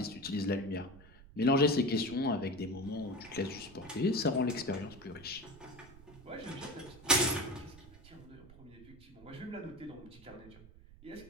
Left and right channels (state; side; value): noise; right; rumble, 20 dB below the sound